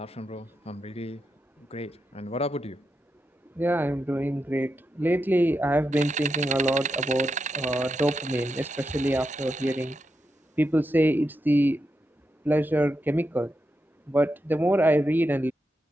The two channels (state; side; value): normal; both; correlation 0.86